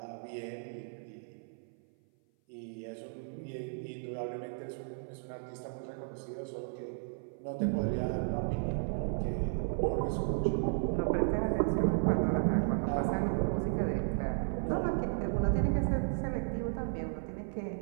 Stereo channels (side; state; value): left; silent; 55 dB below the other